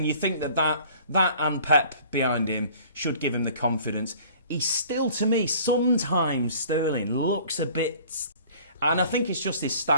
you think that and Pep behind him should give him the confidence. He's still, to me, sometimes Sterling looks a bit. And I think it's just his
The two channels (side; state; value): both; inverted; correlation -0.50